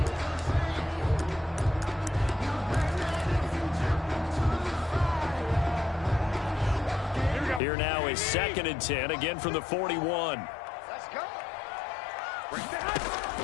Here we go. Here now is 2nd and 10, again from the 41. Let's go.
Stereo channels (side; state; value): right; drops out; at 7.6 s